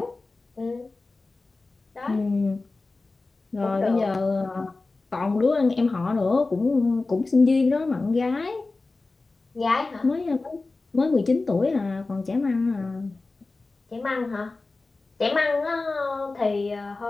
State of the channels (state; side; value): quieter; right; 3.5 dB